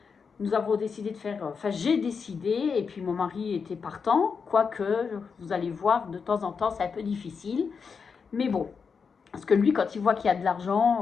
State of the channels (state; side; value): quieter; right; 5.7 dB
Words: nous avons décidé de faire, enfin j'ai décidé et puis mon mari était partant, quoique vous allez voir de temps en temps c'est un peu difficile. Mais bon, parce que lui, quand il voit qu'il y a de